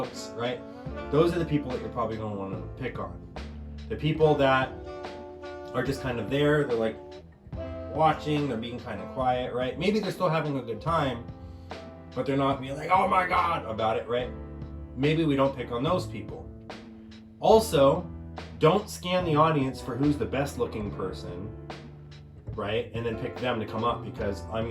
right? Those are the people that you're probably going to want to pick on. The people that are just kind of there, they're like watching, they're being kind of quiet, right? Maybe they're still having a good time, but they're not being like, oh my God, about it, right? Maybe we don't pick on those people. Also, don't scan the audience for who's the best looking person, right? And then pick them to come up because I'm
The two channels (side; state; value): both; identical; correlation 1.00